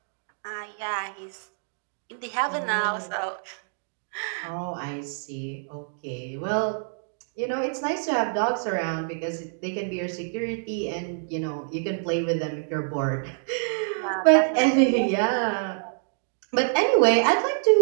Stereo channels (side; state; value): left; silent; digital silence